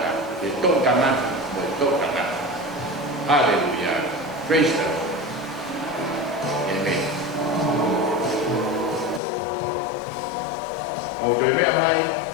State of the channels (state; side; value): drops out; right; at 9.2 s